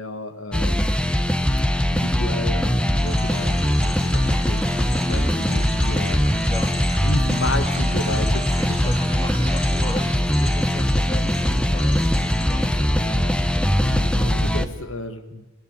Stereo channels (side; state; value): both; normal; correlation 0.89